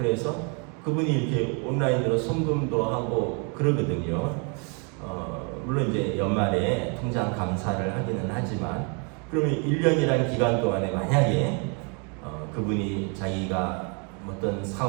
그분이 이렇게 온라인으로 송금도 하고 그러거든요. 물론 이제 연말에 통장 감사를 하기는 하지만 그러면 1년이라는 기간 동안에 만약에 그분이 자기가 어떤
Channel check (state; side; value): quieter; left; 35.6 dB